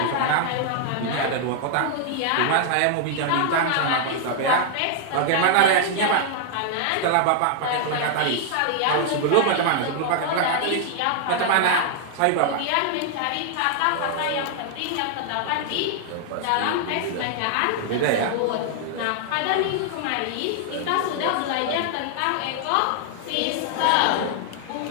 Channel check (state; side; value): different; both; correlation 0.00